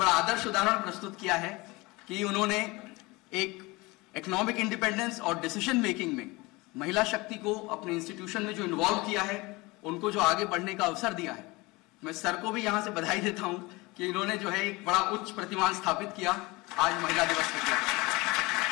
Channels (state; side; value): quieter; right; 23.5 dB